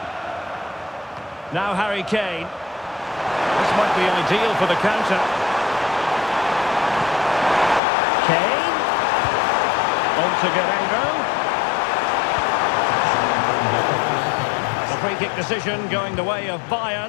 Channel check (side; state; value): right; drops out; at 7.8 s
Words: Now Harry Kane. This might be ideal for the counter. Kane. On to Guerrero. Free kick decision going the way of